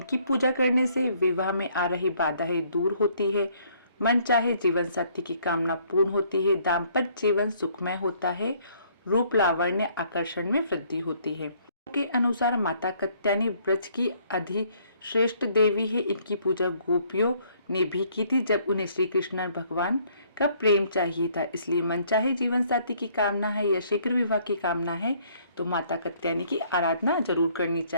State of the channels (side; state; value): both; inverted; correlation -0.64